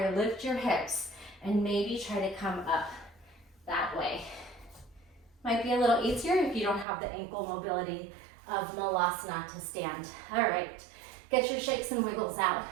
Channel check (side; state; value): left; drops out; at 6.9 s